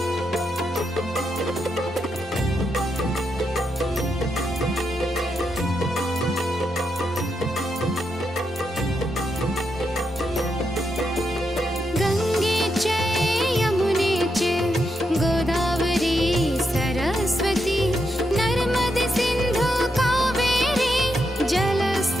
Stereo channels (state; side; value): normal; both; correlation 0.82